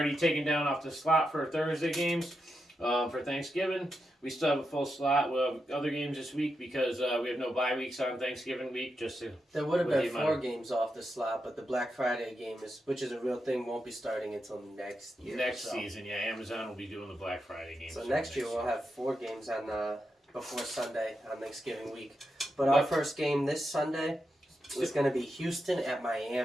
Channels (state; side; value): normal; both; correlation 0.86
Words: taken down off the slot for Thursday games for Thanksgiving. We still have a full slot. We'll have other games this week because we have no bye weeks on Thanksgiving week. There would have been 4 games off the slot, but the Black Friday game, which is a real thing, won't be starting until next year. Next season, yeah. Amazon will be doing the Black Friday game. So next year we'll have 4 games on before Sunday on Thanksgiving week. But our first game this Sunday is going to be Houston at